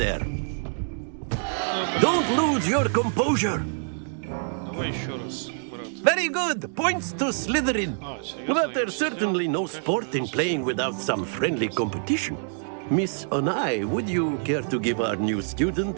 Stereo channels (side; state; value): left; silent; digital silence